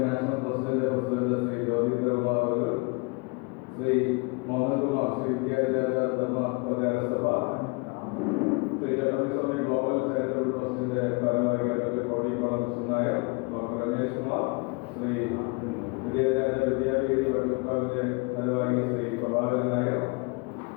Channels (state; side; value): quieter; right; 29.5 dB